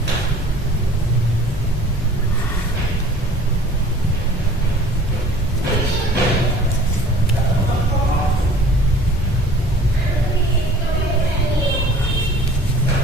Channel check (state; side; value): normal; both; correlation 0.49